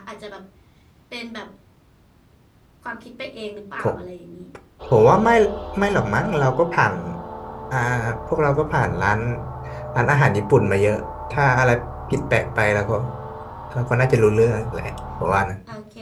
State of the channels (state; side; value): identical; both; correlation 1.00